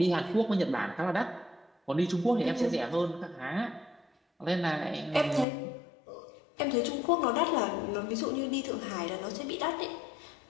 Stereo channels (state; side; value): drops out; right; at 5.5 s